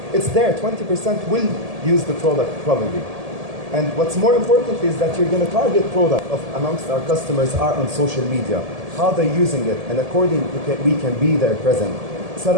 It's there, 20% will use the product probably. And what's more important is that you're going to target product amongst our customers are on social media, how they're using it, and accordingly we can be there present. It's not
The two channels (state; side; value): late; left; 1.7 ms